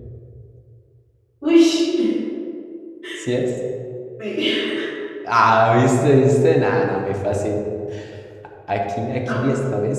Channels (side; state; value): both; identical; correlation 1.00